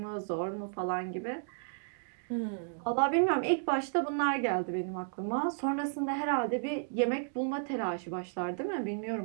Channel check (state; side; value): silent; left; digital silence